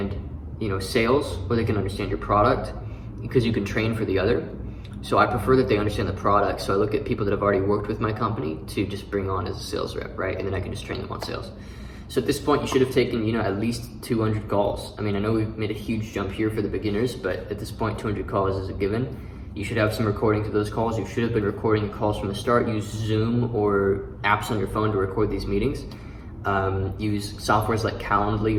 sales, or they can understand your product, because you can train for the other. So I prefer that they understand the product. So I look at people that have already worked with my company to just bring on as a sales rep, right? And then I can just train them on sales. So at this point, you should have taken, at least 200 calls. I mean, I know we've made a huge jump here for the beginners, but at this point, 200 calls is a given. You should have some recordings of those calls. You should have been recording the calls from the start. Use Zoom or apps on your phone to record these meetings. Use softwares like Calendly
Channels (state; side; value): identical; both; correlation 1.00